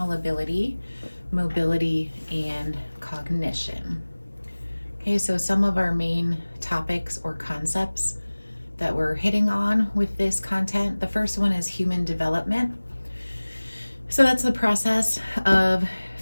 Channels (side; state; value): both; inverted; correlation -1.00